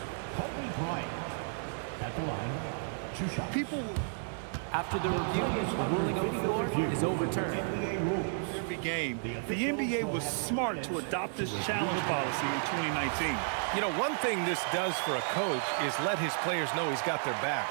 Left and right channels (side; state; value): left; silent; digital silence